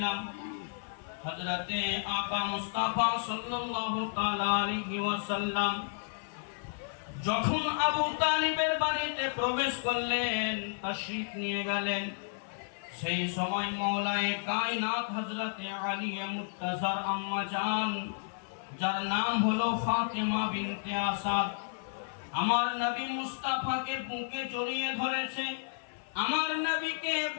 হযরতে আকা মুস্তাফা সাল্লাল্লাহু তাআলা আলাইহি ওয়াসাল্লাম যখন আবু তালিবের বাড়িতে প্রবেশ করলেন, তাশরীফ নিয়ে গেলেন, সেই সময় মওলায়ে কায়নাত হযরতে আলী মুর্তজার আম্মা জান, যার নাম হলো ফাতেমা বিনতে আসাদ, আমার নবী মুস্তাফাকে বুকে জড়িয়ে ধরেছে, আমার নবীকে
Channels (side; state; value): right; silent; 56 dB below the other